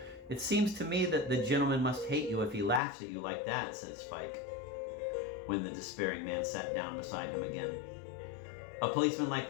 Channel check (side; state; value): right; drops out; at 2.8 s